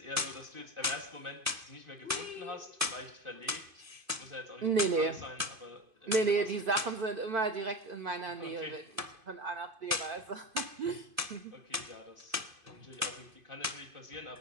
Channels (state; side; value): late; left; 2.5 ms